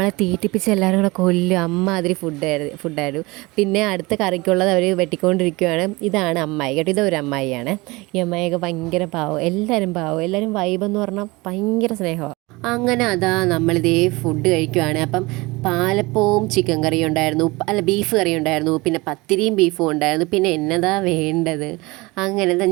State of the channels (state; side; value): quieter; left; 23.3 dB